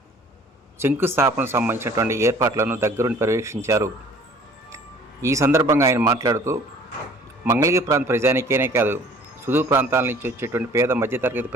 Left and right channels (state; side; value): normal; both; correlation 0.52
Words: శంకుస్థాపనకు సంబంధించినటువంటి ఏర్పాట్లను దగ్గరుండి పర్యవేక్షించారు. ఈ సందర్భంగా ఆయన మాట్లాడుతూ మంగళగిరి ప్రాంత ప్రజానీకేనే కాదు, సుదూర ప్రాంతాల నుంచి వచ్చేటువంటి పేద మధ్యతరగతి